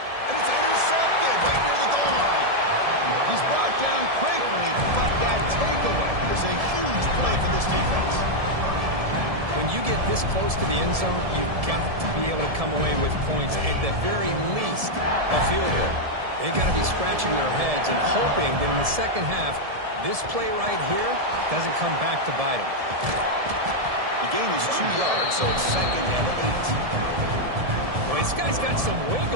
And it's intercepted right near the goal line. He's brought down quickly, but that takeaway is a huge play for this defense. When you get this close to the end zone, you've got to be able to come away with points, at the very least a field goal. They got to be scratching their heads and hoping that in the second half, this play right here doesn't come back to bite them. The gain is 2 yards, so it's 2nd and 8. Well, this guy's got some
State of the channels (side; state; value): left; late; 1.7 ms